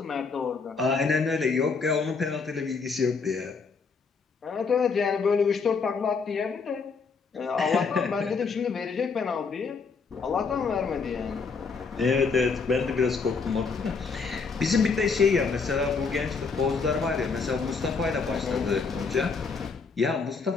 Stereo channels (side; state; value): right; quieter; 4.9 dB